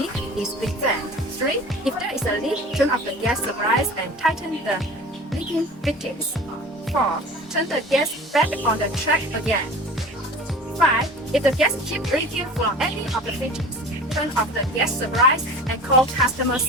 is present. 3. If there is a leak, turn off the gas supplies and tighten the leaking fittings. 4. Turn the gas back on the track again. 5. If the gas keeps leaking from any of the fittings, turn off the gas supplies and call customer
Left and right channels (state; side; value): normal; both; correlation 0.39